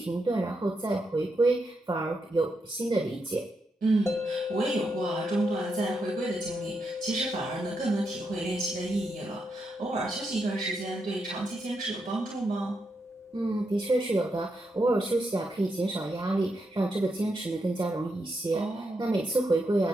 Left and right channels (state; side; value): normal; both; correlation 0.83